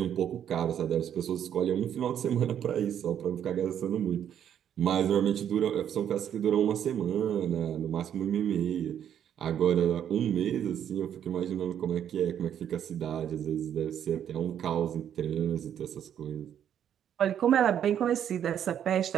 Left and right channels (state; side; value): quieter; left; 9.5 dB